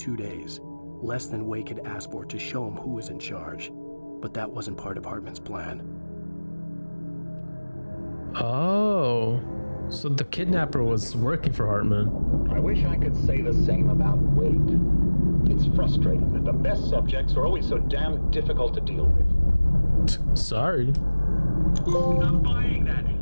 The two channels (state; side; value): inverted; both; correlation -1.00